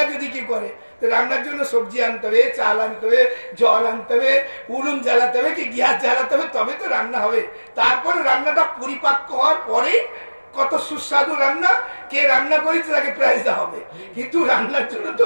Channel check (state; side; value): inverted; both; correlation -1.00